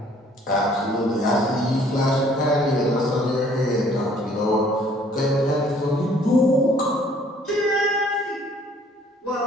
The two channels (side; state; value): both; normal; correlation 0.58